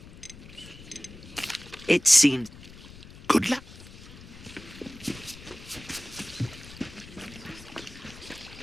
It seemed... Good luck.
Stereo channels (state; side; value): noise; left; rumble, 17 dB below the sound